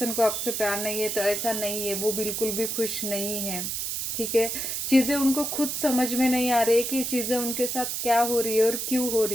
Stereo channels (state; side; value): noise; right; hiss, 2 dB below the sound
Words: को आपसे प्यार नहीं है, तो ऐसा नहीं है, वो बिल्कुल भी खुश नहीं है, ठीक है। चीज़ें उनको खुद समझ में नहीं आ रही है कि चीज़ें उनके साथ क्या हो रही है और क्यों हो